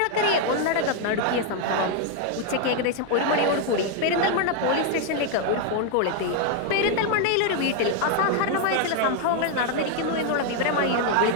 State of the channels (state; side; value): different; both; correlation 0.00